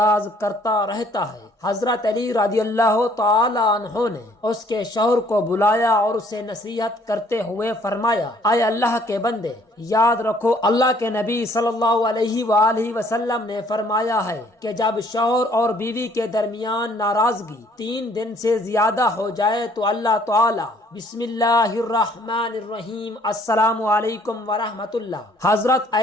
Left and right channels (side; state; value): both; normal; correlation 0.61